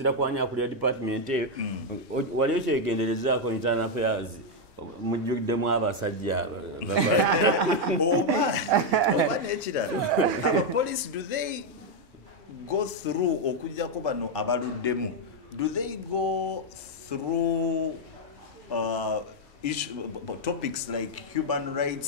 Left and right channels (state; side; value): normal; both; correlation 0.01